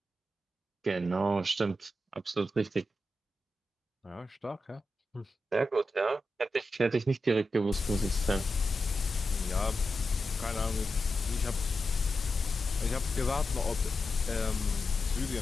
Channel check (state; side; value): normal; both; correlation 0.89